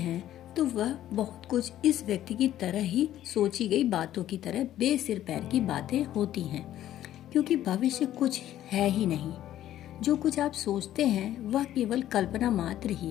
तो वह बहुत कुछ इस व्यक्ति की तरह ही सोची गई बातों की तरह बेसिर पैर की बातें होती हैं, क्योंकि भविष्य कुछ है ही नहीं। जो कुछ आप सोचते हैं वह केवल कल्पना मात्र ही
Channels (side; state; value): right; quieter; 12.5 dB